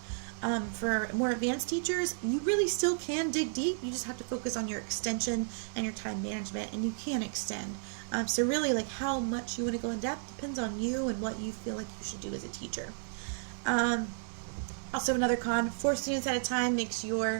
For more advanced teachers, you really still can dig deep. You just have to focus on your extension and your time management, and you can extend. So really, like how much you want to go in depth depends on you and what you feel like you should do as a teacher. Also, another con, 4 students at a time makes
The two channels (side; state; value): left; silent; digital silence